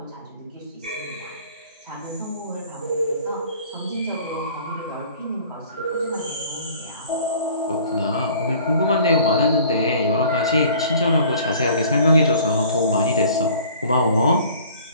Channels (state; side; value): inverted; both; correlation -0.50